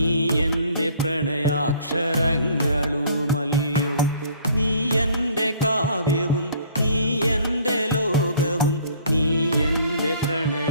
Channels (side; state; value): both; inverted; correlation -0.56